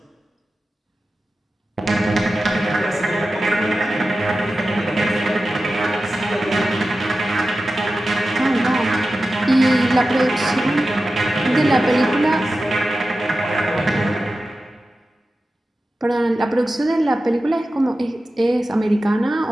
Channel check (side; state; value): both; normal; correlation 0.93